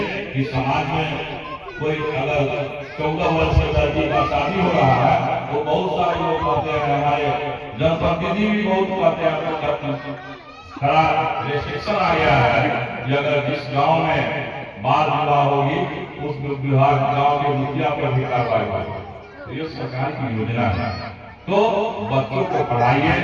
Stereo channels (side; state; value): both; identical; correlation 1.00